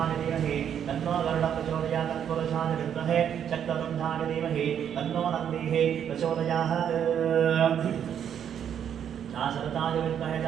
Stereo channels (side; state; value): left; quieter; 8.9 dB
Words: धीमहि तन्नो गरुडः प्रचोदयात् तत्पुरुषाय विद्महे शक्ततुण्डाय धीमहि तन्नो नन्दिः प्रचोदयात् शरताय विद्महे